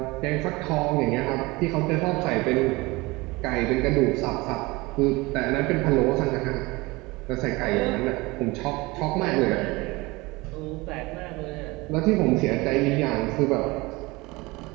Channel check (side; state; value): left; quieter; 23.0 dB